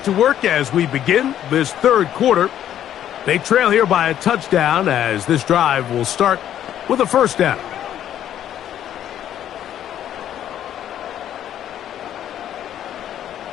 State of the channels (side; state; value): right; quieter; 10.9 dB